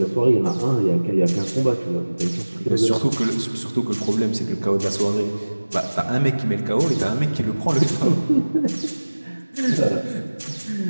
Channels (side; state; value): both; inverted; correlation -1.00